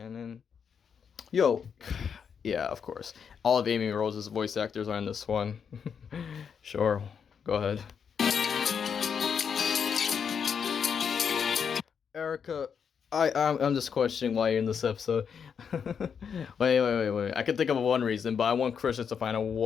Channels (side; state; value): right; quieter; 6.9 dB